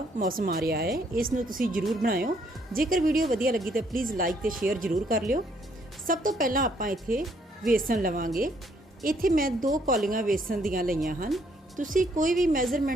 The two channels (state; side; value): normal; both; correlation 0.68